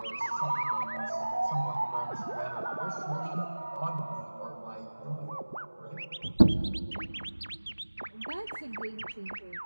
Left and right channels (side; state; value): both; inverted; correlation -1.00